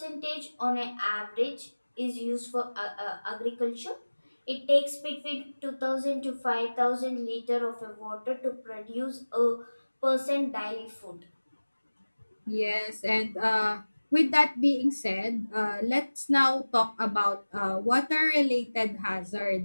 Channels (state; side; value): inverted; both; correlation -1.00